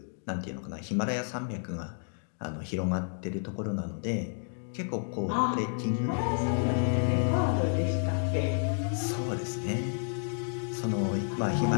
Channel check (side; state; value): right; silent; digital silence